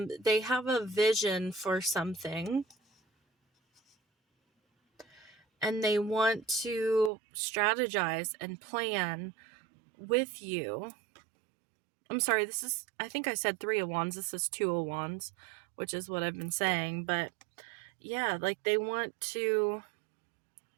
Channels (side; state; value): left; drops out; at 7.1 s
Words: have a vision for something, and they want to strategize and plan with you. I'm sorry, I think I said 3 of Wands. This is 2 of Wands, which is what I've been saying. But yeah, like they want to,